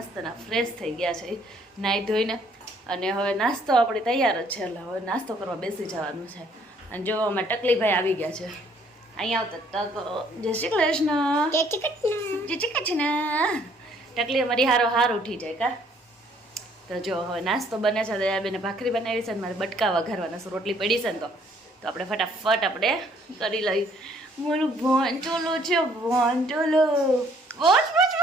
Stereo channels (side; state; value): both; normal; correlation 0.63